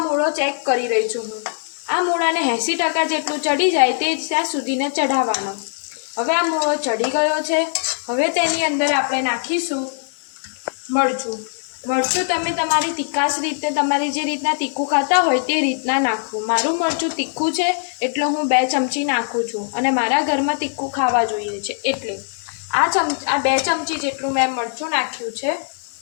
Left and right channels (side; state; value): right; silent; digital silence